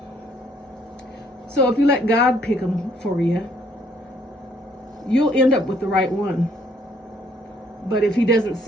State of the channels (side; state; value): both; normal; correlation 0.65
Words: So if you let God pick them for you, you'll end up with the right one. But if he doesn't